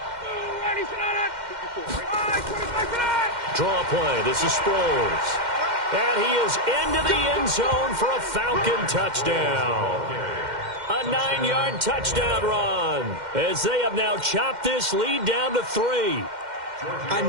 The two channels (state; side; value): late; left; 2.1 ms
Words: Draw play. This is Sproles. And he is into the end zone for a Falcon touchdown. A 9-yard touchdown run as they have now chopped this lead down to 3. I